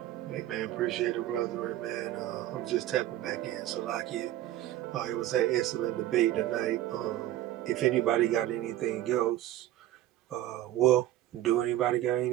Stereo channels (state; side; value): quieter; left; 13.8 dB